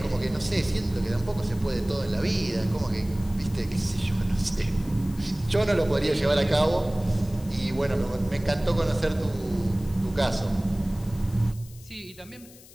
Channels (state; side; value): noise; left; hiss, 22 dB below the sound